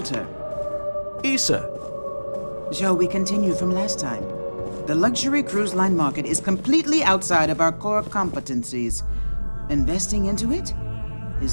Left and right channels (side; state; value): both; inverted; correlation -1.00